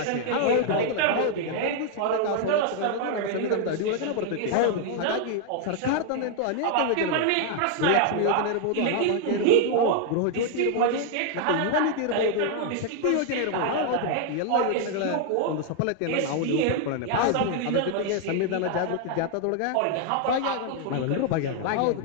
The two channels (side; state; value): both; different; correlation 0.00